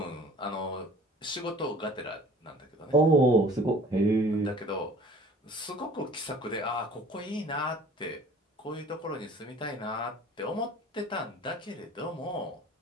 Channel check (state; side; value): normal; both; correlation 0.49